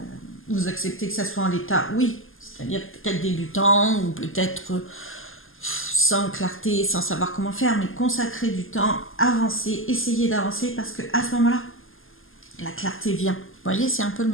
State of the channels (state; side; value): late; right; 0.59 ms